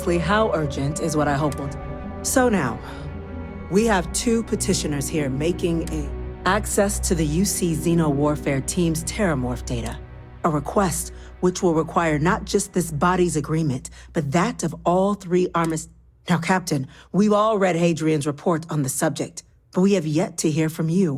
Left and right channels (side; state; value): both; identical; correlation 1.00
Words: how urgent is what I hope will do. So now, we have two petitioners here making access to the UC Xeno Warfare Team's Terramorph data. A request which will require not just this body's agreement, but that of all three armistices. Now, Captain, we've all read Hadrian's report on the subject, but we have yet to hear from